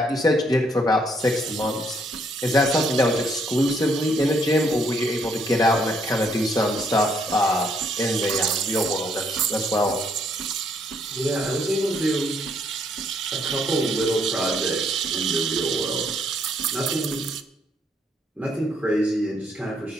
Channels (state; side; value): normal; both; correlation 0.70